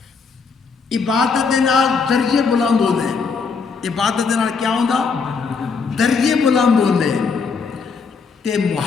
عبادت دے نال درجے بلند ہوندے عبادت دے نال کیا ہوندا درجے بلند ہوندے تے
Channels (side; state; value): right; quieter; 5.2 dB